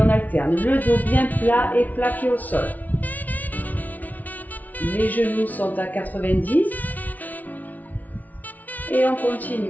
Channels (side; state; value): right; late; 0.076 ms